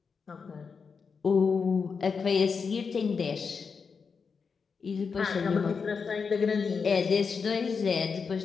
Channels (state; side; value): quieter; right; 5.5 dB